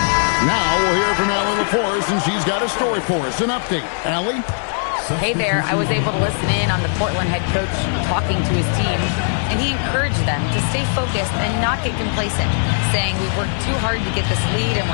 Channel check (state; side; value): silent; right; 66 dB below the other